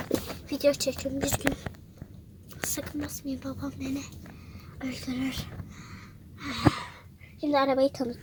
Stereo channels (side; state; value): both; identical; correlation 1.00